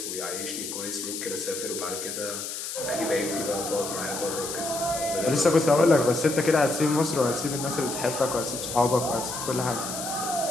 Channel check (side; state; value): left; noise; hiss, 6 dB below the sound